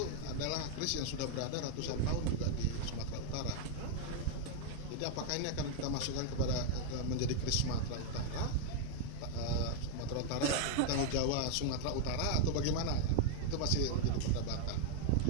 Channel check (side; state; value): both; different; correlation 0.00